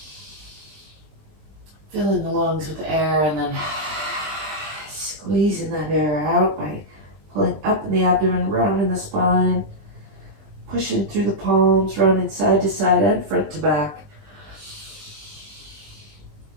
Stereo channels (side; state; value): left; late; 20 ms